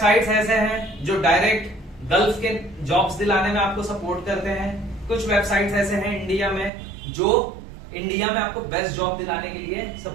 ऐसे हैं जो डायरेक्ट गल्फ के जॉब्स दिलाने में आपको सपोर्ट करते हैं। कुछ वेबसाइट्स ऐसे हैं इंडिया में जो इंडिया में आपको बेस्ट जॉब दिलाने के लिए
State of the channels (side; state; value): left; drops out; at 6.7 s